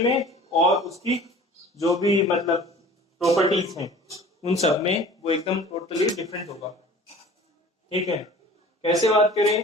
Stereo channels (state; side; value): normal; both; correlation 0.44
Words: में और उसकी जो भी मतलब प्रॉपर्टीज हैं उन सब में वो एकदम टोटली डिफरेंट होगा। ठीक है, कैसे बात करें,